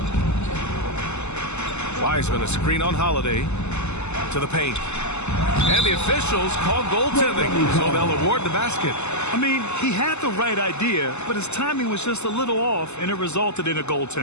Wiseman, a screen on Holiday. To the paint. And the officials call goaltending, so they'll award the basket. I mean, he had the right idea, but his timing was just a little off, and it resulted in a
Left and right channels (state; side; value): late; right; 0.82 ms